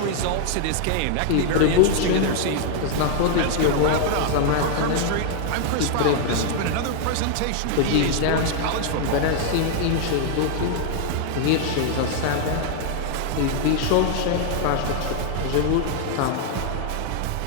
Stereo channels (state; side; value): different; both; correlation 0.00